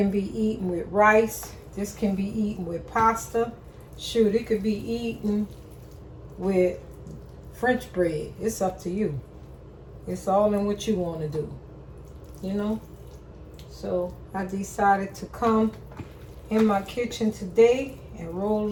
be eaten with rice. This can be eaten with pasta. Shoot, it could be eaten with French bread. It's up to you. It's all in what you want to do. You know? So I decided to come in my kitchen today and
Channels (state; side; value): identical; both; correlation 1.00